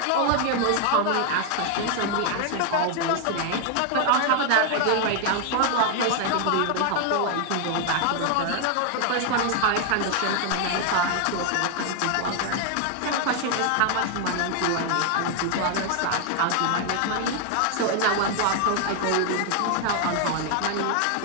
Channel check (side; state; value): both; different; correlation 0.00